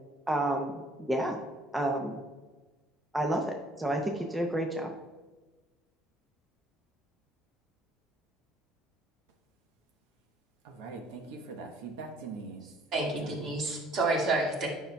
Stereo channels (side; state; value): both; normal; correlation 0.60